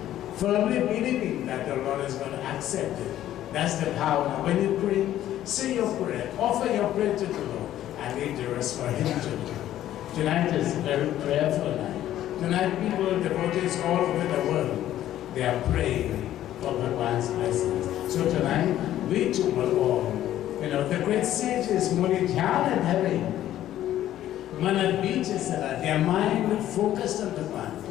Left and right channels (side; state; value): right; quieter; 12.6 dB